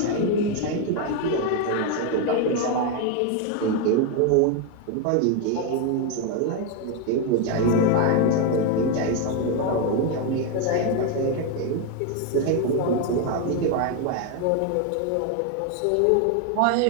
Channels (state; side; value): different; both; correlation 0.02